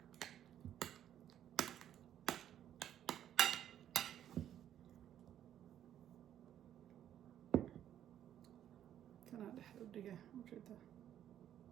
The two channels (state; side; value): quieter; left; 10.7 dB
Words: كان هذا حلو دقيقة موجودة.